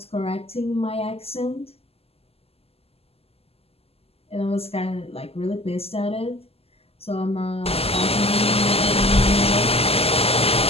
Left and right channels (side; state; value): right; late; 0.29 ms